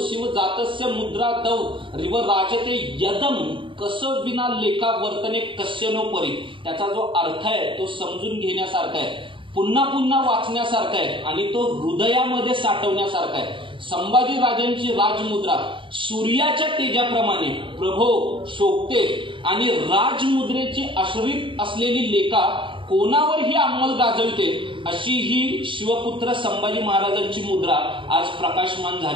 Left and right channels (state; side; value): late; left; 0.25 ms